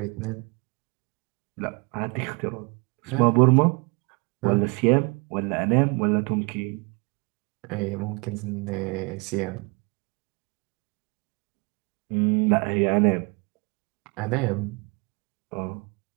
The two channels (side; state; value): left; quieter; 30.3 dB